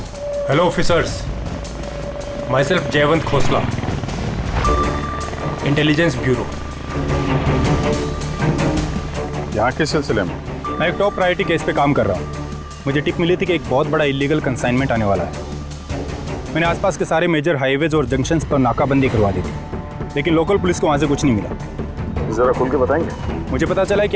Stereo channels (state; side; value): identical; both; correlation 1.00